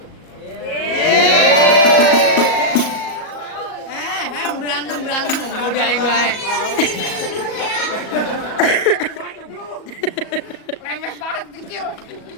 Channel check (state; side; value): late; right; 38 ms